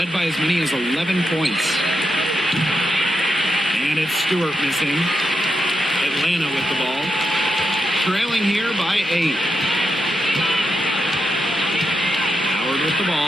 by as many as 11 points. And it's Stewart missing. Atlanta with the ball. Trailing here by 8. Howard with the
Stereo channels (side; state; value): both; normal; correlation 0.85